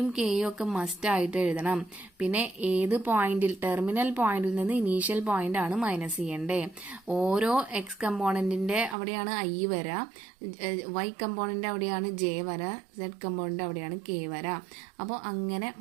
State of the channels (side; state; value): left; drops out; at 9.0 s